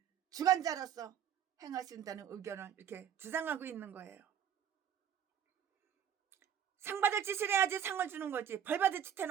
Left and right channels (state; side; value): quieter; left; 9.1 dB